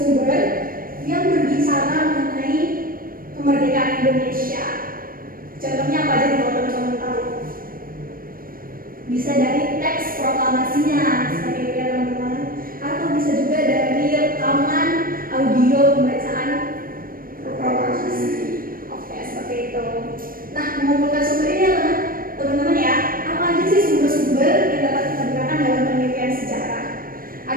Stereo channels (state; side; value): late; left; 0.41 ms